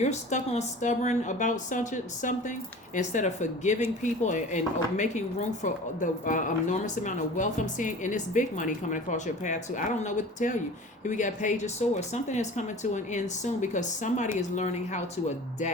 stuck on stubborn about something, instead of forgiving people and making room for the enormous amount of wealth I'm seeing, and it's big money coming across your path too. I don't know what to tell you. Here we got Page of Swords. Something is coming to an end soon because somebody is learning how to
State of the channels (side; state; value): both; normal; correlation 0.40